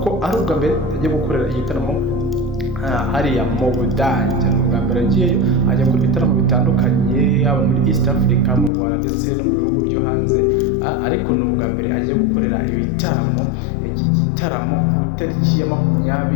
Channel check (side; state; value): right; drops out; at 8.7 s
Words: ari ubwa mbere ajya gukorera igitaramo hariya mu Budage. Ni ubwa mbere agiyeyo, ajya gukora ibitaramo bitandukanye yaba muri East Africa, mu Rwanda ndetse no mu bihugu byo hanze, ariko ni ubwa mbere agiye gukorera ibitaramo. Iki gitaramo ku itariki ya